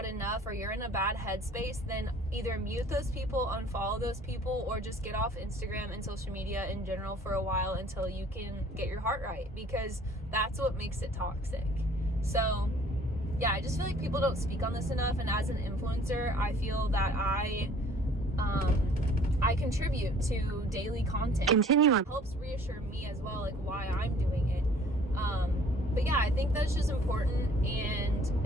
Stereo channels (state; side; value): normal; both; correlation 0.53